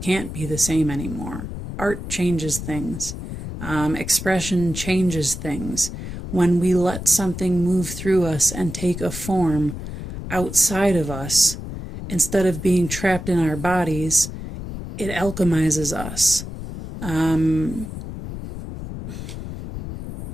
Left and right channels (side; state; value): left; noise; rumble, 8 dB below the sound